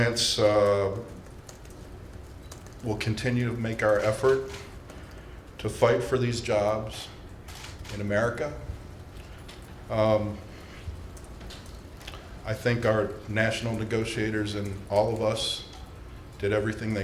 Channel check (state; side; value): identical; both; correlation 1.00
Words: will continue to make our effort to fight for these jobs in America. I think our national negotiators and all of us did everything